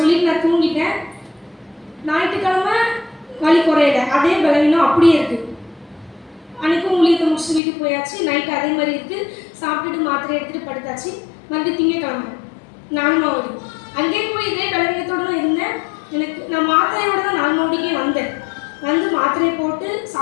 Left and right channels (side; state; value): right; drops out; at 7.6 s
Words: நான் தூங்கிட்டேன். ஞாயிற்றுக்கிழமை வலி குறையலை, அதே பலவீனம் அப்படியே இருக்குது. அன்றைக்கும் ஊழியத்தை முடிச்சுட்டு வீட்டுக்கு போயாச்சு. நைட்டு அதே மாதிரி இருக்குது. சாப்பிட்டுட்டு மாத்திரை எடுத்துகிட்டு படுத்தாச்சு. மறுபடியும் திங்கக்கிழமை 4 மாவடி அங்கேயே போய் இதே பலவீனத்தோடு தான் இருந்தேன். நான் மாத்திரையோடு தான் 4 மாவடிக்கே வந்தேன். வந்து மாத்திரையை போட்டு